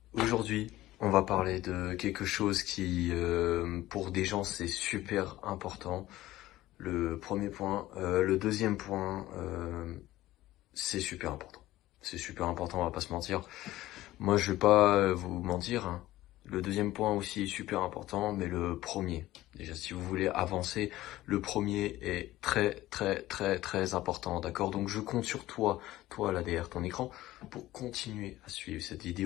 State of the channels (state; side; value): quieter; right; 16.0 dB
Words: Aujourd'hui, on va parler de quelque chose qui, pour des gens, c'est super important. Le premier point. Le deuxième point, c'est super important. C'est super important, on va pas se mentir. Moi, je vais pas vous mentir, hein. Le deuxième point aussi est super important, mais le premier, déjà si vous voulez avancer, le premier est très important, d'accord? Donc je compte sur toi là derrière ton écran, pour continuer à suivre cette